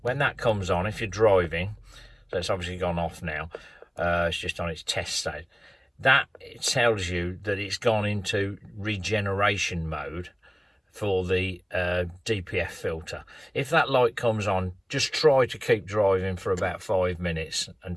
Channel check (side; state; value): both; identical; correlation 1.00